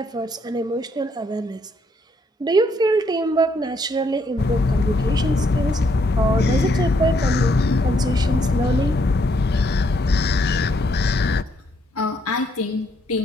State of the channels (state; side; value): normal; both; correlation 0.72